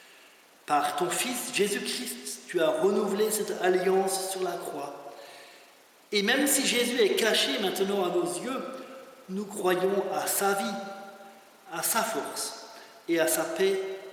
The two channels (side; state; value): both; identical; correlation 1.00